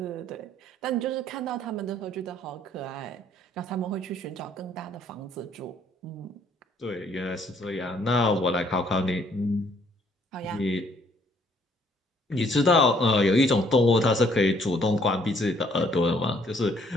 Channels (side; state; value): both; normal; correlation 0.64